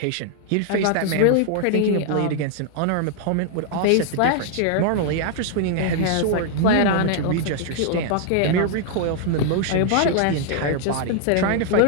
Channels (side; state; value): both; different; correlation 0.00